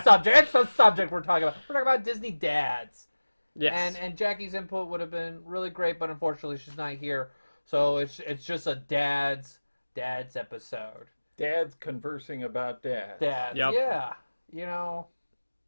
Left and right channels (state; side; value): inverted; both; correlation -1.00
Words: subject. It's the subject we're talking about. We're talking about Disney dads. Yes. And Jackie's input would have been really great, but unfortunately she's not here. So it's just a dad's episode. Dad's conversing about dad. Dads, Yep. yeah. You know,